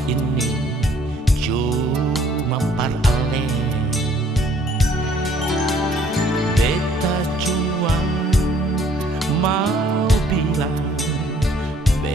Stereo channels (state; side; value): normal; both; correlation 0.61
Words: ini cuma paralel. Beta cuma mau bilang